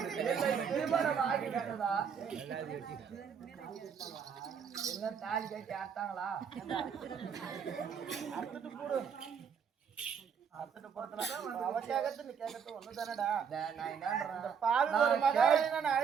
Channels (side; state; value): left; quieter; 7.0 dB